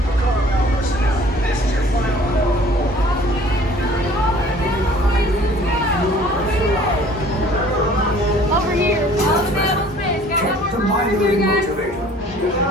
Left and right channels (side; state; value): both; normal; correlation 0.52